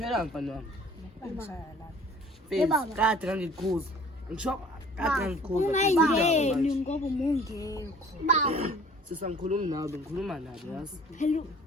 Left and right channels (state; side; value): normal; both; correlation 0.51